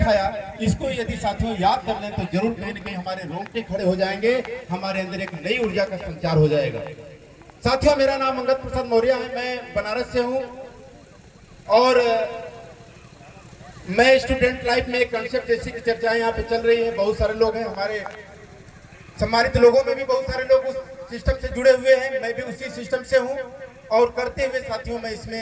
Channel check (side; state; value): both; identical; correlation 1.00